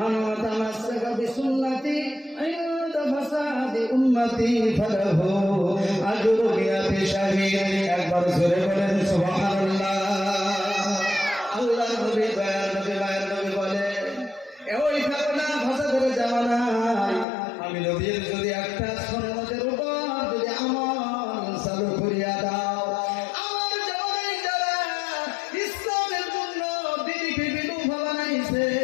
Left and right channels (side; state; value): right; drops out; at 17.2 s